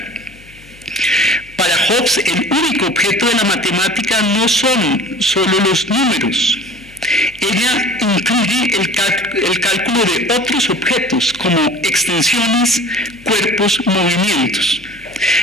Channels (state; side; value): noise; left; hum, 24 dB below the sound